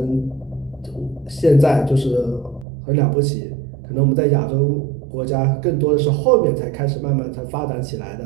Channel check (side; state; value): left; drops out; at 2.7 s